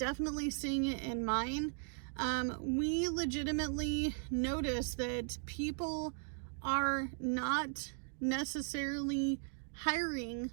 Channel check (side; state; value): left; silent; 53 dB below the other